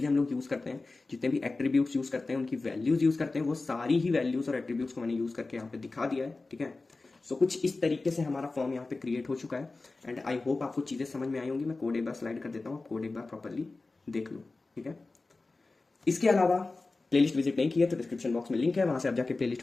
हम लोग यूज करते हैं, जितने भी एट्रीब्यूट्स यूज करते हैं, उनकी वैल्यूज यूज करते हैं, वो सारी ही वैल्यूज और एट्रीब्यूट्स को मैंने यूज करके यहाँ पे दिखा दिया है, ठीक है। सो कुछ इस तरीके से हमारा फॉर्म यहाँ पे क्रिएट हो चुका है एंड आई होप आपको चीजें समझ में आई होंगी। मैं कोड एक बार स्लाइड कर देता हूँ, कोड एक बार प्रॉपरली देख लो, ठीक है। इसके अलावा प्लेलिस्ट विजिट नहीं किया तो डिस्क्रिप्शन बॉक्स में लिंक है, वहां से आप जाके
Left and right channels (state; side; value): quieter; right; 3.5 dB